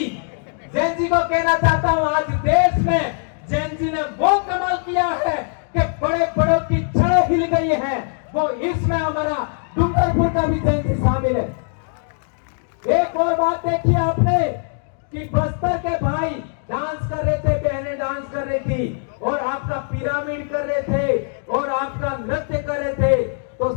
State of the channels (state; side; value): silent; right; 65 dB below the other